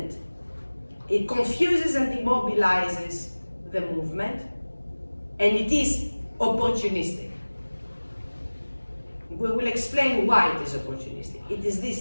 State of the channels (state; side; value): inverted; both; correlation -1.00